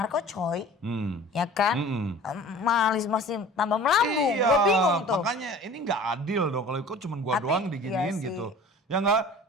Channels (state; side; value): normal; both; correlation 0.43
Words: Ya kan? Malis masih tambah melambung. Iya, Gue bingung tuh. makanya ini nggak adil dong kalau kok cuma gua Tapi, doang diginiin iya sih. gitu. Ya nggak,